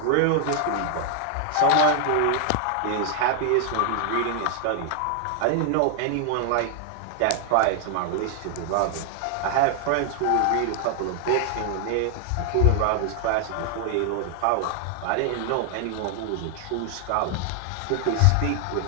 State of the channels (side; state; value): both; different; correlation 0.00